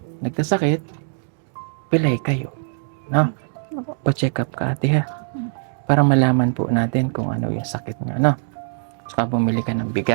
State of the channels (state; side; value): silent; left; 64 dB below the other